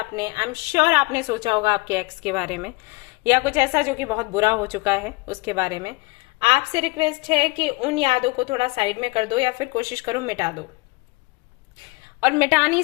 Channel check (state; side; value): quieter; right; 25.5 dB